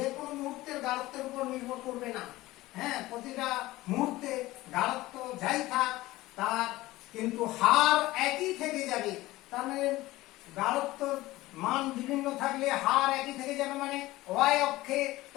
কোনো মুহূর্তের গাঢ়ত্বের উপর নির্ভর করবে না। হ্যাঁ, প্রতিটা মুহূর্তে গাঢ়ত্ব যাই থাক তার কিন্তু হার একই থেকে যাবে। তার মানে গাঢ়ত্ব মান বিভিন্ন থাকলে হার একই থেকে যাবে, মানে ওয়াই অক্ষে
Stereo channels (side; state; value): right; quieter; 18.1 dB